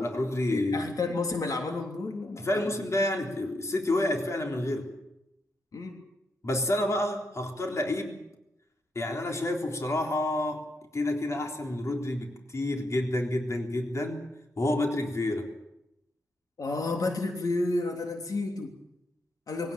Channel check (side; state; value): both; normal; correlation 0.81